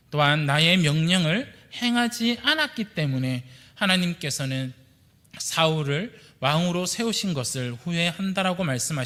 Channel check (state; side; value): identical; both; correlation 1.00